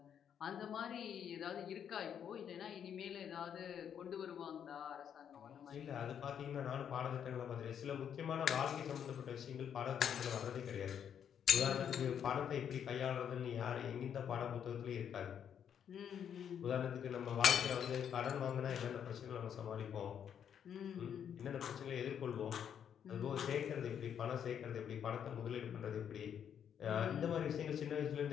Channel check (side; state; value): right; quieter; 8.6 dB